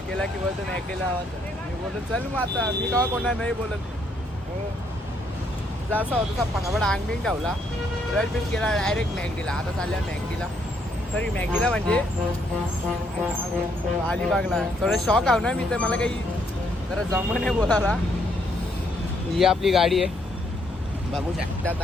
केला की बोलतो मॅगडीला आवाज. मी बोलतो चल मग आता मी का कोणा नाही बोलत. जसा होता तसा पटापट अंगबिंग ठेवला. ब्रश बिश केला डायरेक्ट मॅगडीला. आता चालल्या मॅगडीला. सॉरी मॅगडीला म्हणजे अलिबागला. थोडं शॉक आहो ना मी तर. मला काही जरा जमं नाही बोलायला. ही आपली गाडी आहे बघू शकता.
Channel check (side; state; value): both; normal; correlation 0.72